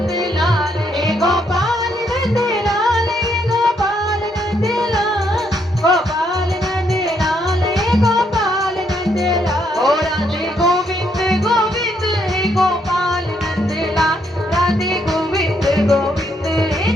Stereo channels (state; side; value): normal; both; correlation 0.73